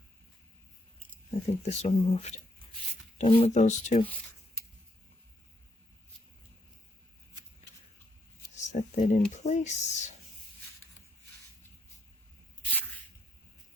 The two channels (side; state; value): both; normal; correlation 0.74